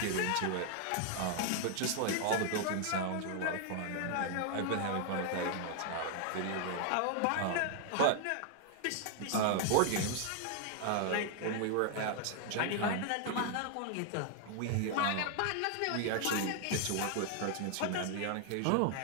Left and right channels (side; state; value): both; different; correlation 0.00